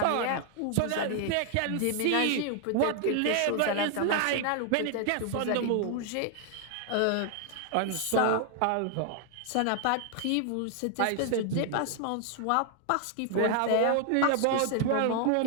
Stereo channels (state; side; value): different; both; correlation 0.00